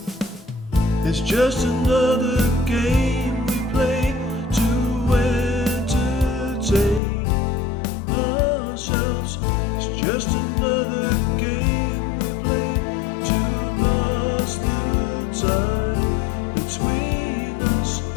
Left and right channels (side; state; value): right; drops out; at 7.0 s